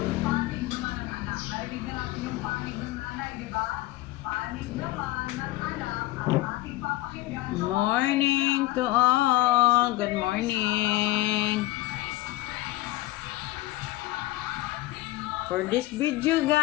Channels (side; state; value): right; quieter; 17.6 dB